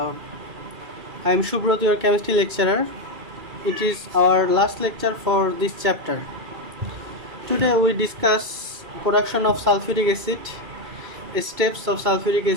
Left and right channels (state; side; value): late; left; 2.3 ms